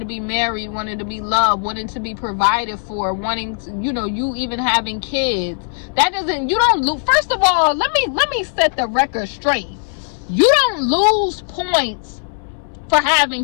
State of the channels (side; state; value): right; silent; 67 dB below the other